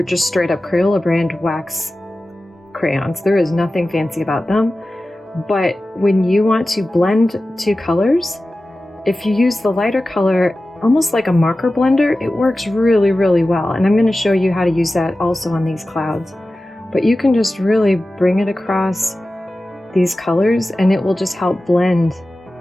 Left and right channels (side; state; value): both; normal; correlation 0.95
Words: just straight up Crayola brand wax crayons. There is nothing fancy about them. But when you want to blend two colors, if you use the lighter color, almost like a marker blender, it works really, really well. And I'm going to show you how to use that also on these clouds. But you can just really bring it across these colors, and it will just help blend